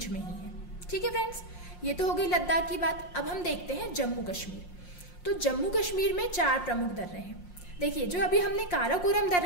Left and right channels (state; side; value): late; right; 5.6 ms